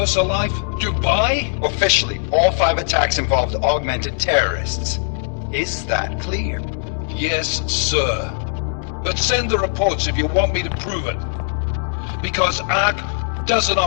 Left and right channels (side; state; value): right; silent; 66 dB below the other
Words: Dubai? Officially, all 5 attacks involved augmented terrorists. Is that clear? Yes, sir. But send the reports if you want me to prove it. Because ARC doesn't